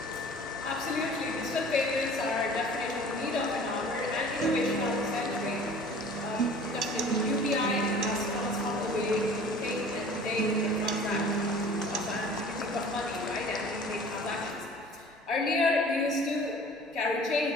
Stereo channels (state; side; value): normal; both; correlation 0.46